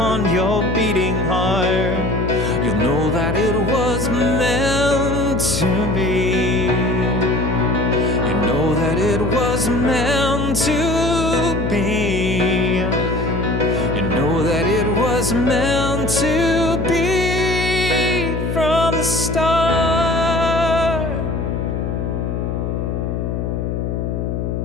your beating heart, you'll know that it was meant to be. You know that it was meant to be. You know that it was meant to be from the start.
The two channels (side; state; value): left; noise; hum, 2 dB below the sound